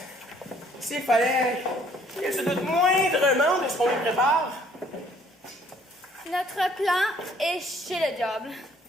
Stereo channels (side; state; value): both; normal; correlation 0.60